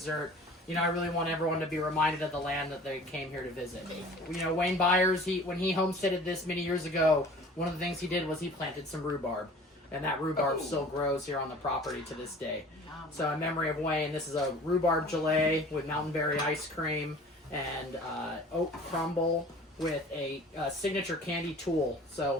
You know, I really want everyone to be reminded of the land that they came here to visit. You know, Wayne Byers, when he homesteaded this many years ago, one of the things he did was he planted some rhubarb. And that rhubarb still grows here on the property to this day. So in memory of Wayne, this is a rhubarb gelée with mountain berry ice cream and oat crumble with a signature candy tool.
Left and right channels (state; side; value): normal; both; correlation 0.45